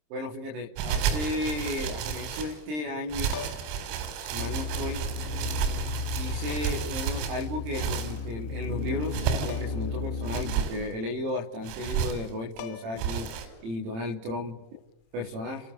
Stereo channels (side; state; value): left; late; 27 ms